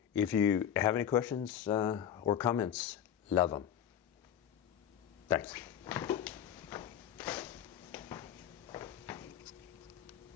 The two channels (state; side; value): quieter; right; 9.6 dB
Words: If you have any questions or comments, love them. Thanks.